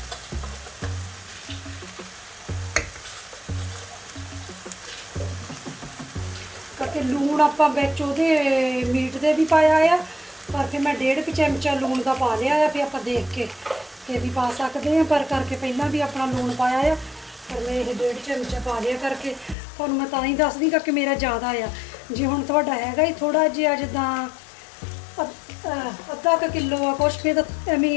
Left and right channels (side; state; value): right; drops out; at 19.6 s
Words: ਕਰਕੇ ਲੂਣ ਆਪਾਂ ਵਿੱਚ ਉਹਦੇ ਮੀਟ ਦੇ ਵੀ ਪਾਇਆ ਆ, ਪਰ ਫਿਰ ਮੈਂ 1.5 ਚਮਚਾ ਲੂਣ ਦਾ ਪਾ ਲਿਆ ਆ, ਫਿਰ ਆਪਾਂ ਦੇਖ ਕੇ ਤੇ ਵੀ ਪਾ ਸਕਦੇ ਆ, ਪਰ ਕਰਕੇ ਪਹਿਲਾਂ ਵੀ ਆਪਣਾ ਲੂਣ ਪਾਇਆ ਆ, ਪਰ ਮੈਂ ਇਹ 1.5 ਚਮਚਾ ਪਾ ਲਿਆ ਕਰਕੇ ਤੁਹਾਨੂੰ ਮੈਂ ਤਾਂ ਹੀ ਦੱਸਦੀ ਕਿ ਮੇਰਾ ਜ਼ਿਆਦਾ ਆ। ਜੇ ਹੁਣ ਤੁਹਾਡਾ ਹੈਗਾ ਹੀ ਥੋੜਾ ਜਿਹਾ ਜਿੱਦਾਂ ਅੱਧਾ ਕੁ ਕਿਲੋ ਆ ਕੁਛ, ਫਿਰ ਤਾਂ